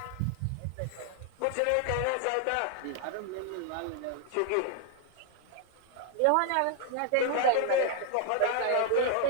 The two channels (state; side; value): different; both; correlation 0.00